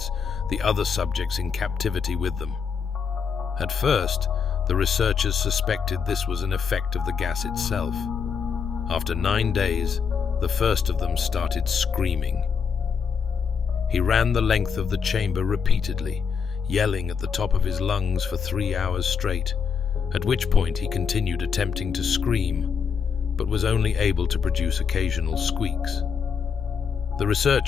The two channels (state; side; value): quieter; right; 6.4 dB